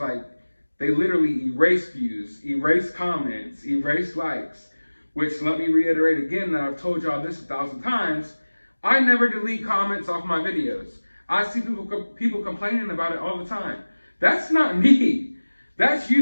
they literally erase views, erase comments, erase likes, which, let me reiterate again that I've told y'all this 1,000 times, I never delete comments off my videos. I see people complaining about it all the time. That's not me. That's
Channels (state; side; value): inverted; both; correlation -1.00